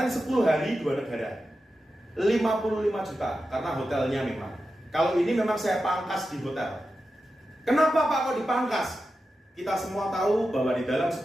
10 hari 2 negara, 55 juta karena hotelnya memang. Kalau ini memang saya pangkas di hotel. Kenapa Pak kok dipangkas? Kita semua tahu bahwa di dalam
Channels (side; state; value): both; normal; correlation 0.91